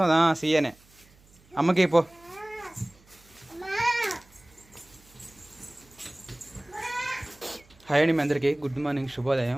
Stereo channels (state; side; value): noise; right; hum, 29 dB below the sound